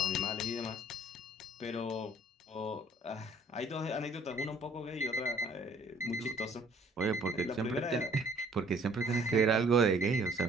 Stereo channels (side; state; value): both; normal; correlation 0.58